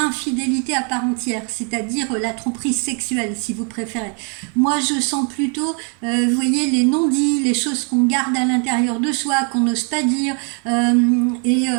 à part entière, c'est-à-dire la tromperie sexuelle, si vous préférez. Moi, je sens plutôt, vous voyez, les non-dits, les choses qu'on garde à l'intérieur de soi, qu'on n'ose pas dire,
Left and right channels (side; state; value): left; quieter; 39.6 dB